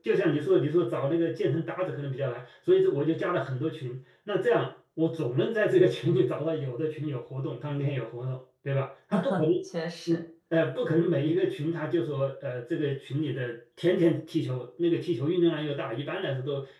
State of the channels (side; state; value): both; identical; correlation 1.00